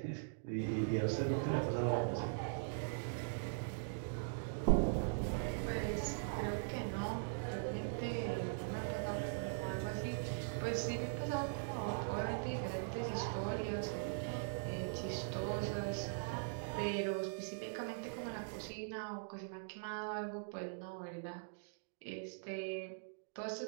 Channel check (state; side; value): silent; left; digital silence